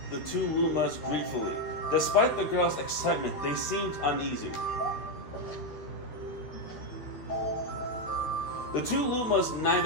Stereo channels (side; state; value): right; late; 13 ms